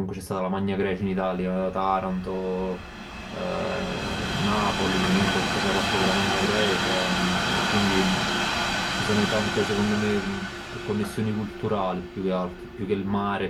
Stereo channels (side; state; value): both; identical; correlation 1.00